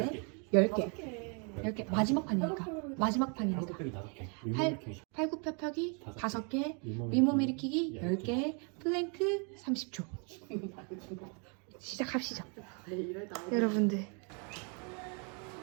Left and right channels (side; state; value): left; quieter; 36.8 dB